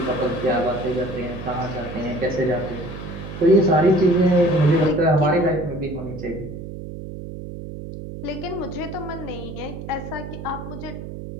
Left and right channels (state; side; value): noise; right; hum, 10 dB below the sound